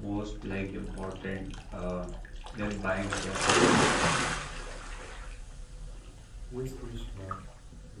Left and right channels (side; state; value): both; identical; correlation 1.00